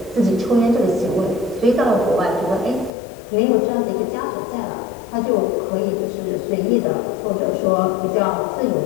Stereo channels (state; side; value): drops out; right; at 2.9 s